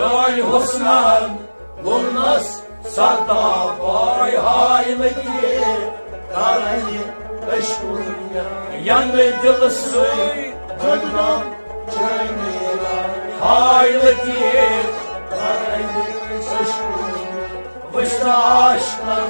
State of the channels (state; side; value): inverted; both; correlation -1.00